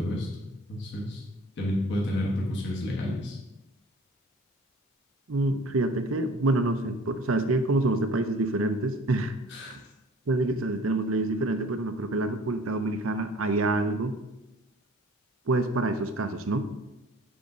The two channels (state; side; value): normal; both; correlation 0.49